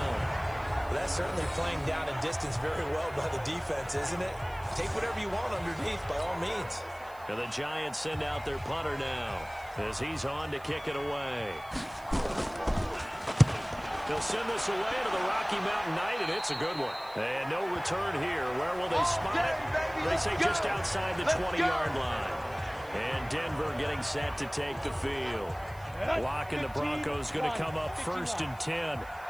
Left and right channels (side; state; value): right; noise; hiss, 25 dB below the sound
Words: Well, that's certainly playing down in distance very well by the defense, isn't it? Take whatever you want underneath, by all means. And the Giants send out their punter now as he's on to kick it away. They'll send this away to the Rocky Mountain Night, and it's a good one. And no return here. Where will they spot it? They say just outside the 20-yard line. And Denver getting set to take the field. Lock and the Broncos going to come up 1st and 10